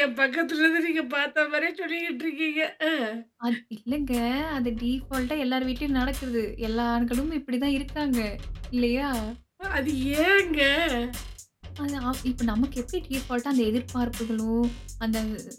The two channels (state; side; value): identical; both; correlation 1.00